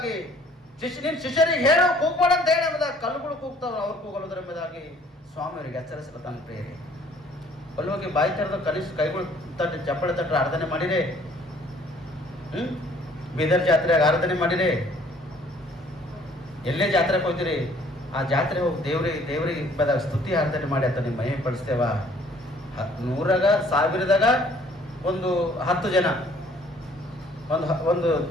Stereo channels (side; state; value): both; normal; correlation 0.58